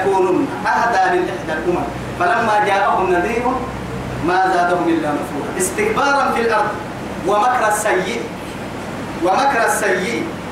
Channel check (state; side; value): identical; both; correlation 1.00